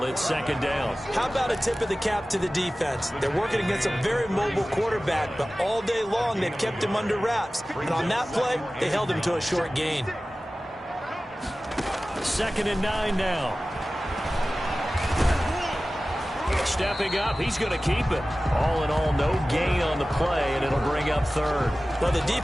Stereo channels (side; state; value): both; normal; correlation 0.96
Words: It's 2nd down. How about a tip of the cap to the defense? They're working against a very mobile quarterback, but all day long they've kept him under wraps. And on that play, they held him to a short gain. 2nd and 9 now. Stepping up, he's going to keep it. All in all, no gain on the play, and it'll bring up 3rd. Well, the